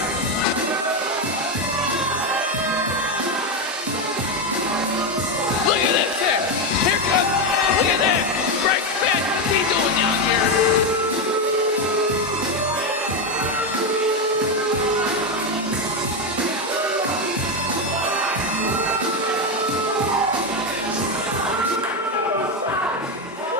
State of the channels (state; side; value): normal; both; correlation 0.09